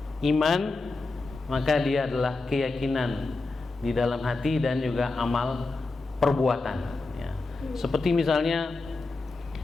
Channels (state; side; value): quieter; right; 3.5 dB